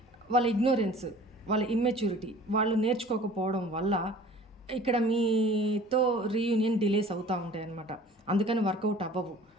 వాళ్ళ ఇగ్నోరెన్స్, వాళ్ళ ఇమ్మెచ్యూరిటీ, వాళ్ళు నేర్చుకోకపోవడం వల్ల ఇక్కడ మీతో రీయూనియన్ డిలేస్ అవుతూ ఉంటాయి అన్నమాట. అందుకని వర్కౌట్ అవ్వవు.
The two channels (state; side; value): normal; both; correlation 0.47